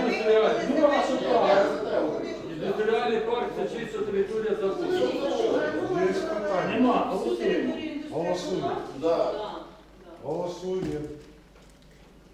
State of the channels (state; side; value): identical; both; correlation 1.00